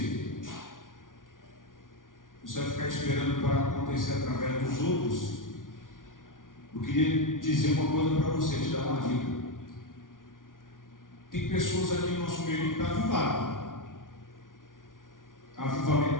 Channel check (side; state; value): right; late; 0.89 ms